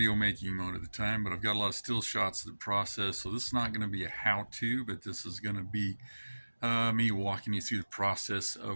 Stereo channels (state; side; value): inverted; both; correlation -1.00